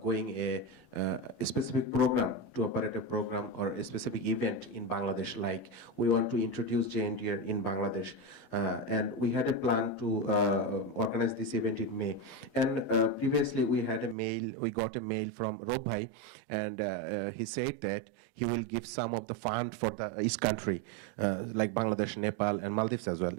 going a specific program, to operate a program or a specific event in Bangladesh, like we want to introduce GNDR in Bangladesh. And we had a plan to organize this event in May. And previously we got a mail from Robhai, and he said that he will give some of the fund for the East country, like Bangladesh, Nepal, and Maldives as well.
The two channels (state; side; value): drops out; left; at 14.2 s